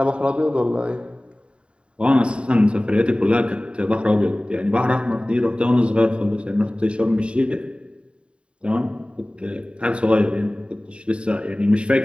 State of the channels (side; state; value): left; late; 0.056 ms